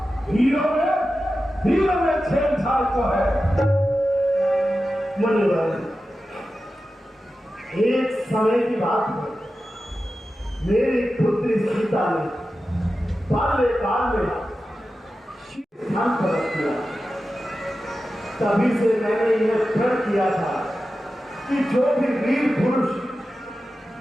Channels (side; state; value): both; normal; correlation 0.93